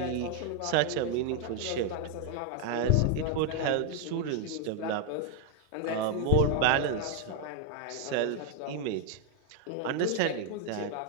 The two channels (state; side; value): different; both; correlation 0.01